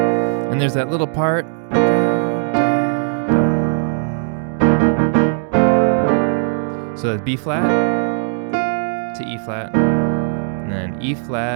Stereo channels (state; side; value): silent; left; 67 dB below the other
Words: And there's that little part. So that's B flat to E flat, and then E